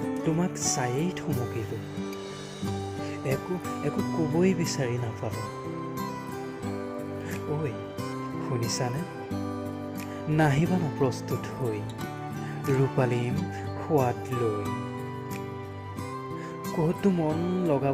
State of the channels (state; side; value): identical; both; correlation 1.00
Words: তোমাক চায়েই থমকিলোঁ, একো ক'বই বিচাৰি নাপালোঁ। ঐ শুনিছানে? নাহিবানা প্ৰস্তুত হৈ ৰূপালীম সোৱাদ লৈ। ক'তো মন